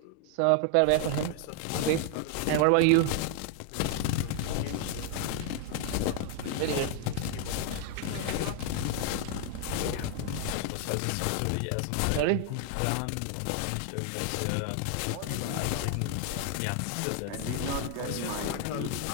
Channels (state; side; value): different; both; correlation 0.00